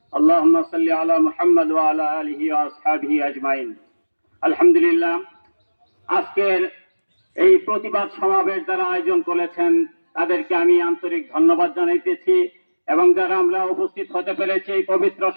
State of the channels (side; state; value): both; inverted; correlation -1.00